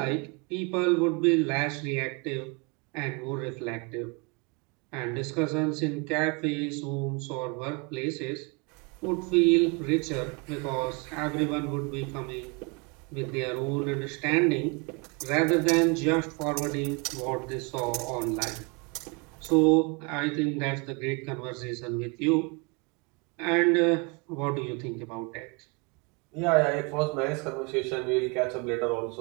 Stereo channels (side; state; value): left; quieter; 31.3 dB